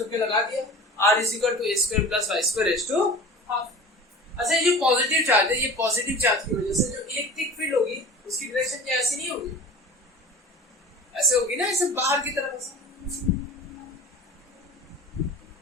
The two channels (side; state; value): both; normal; correlation 0.39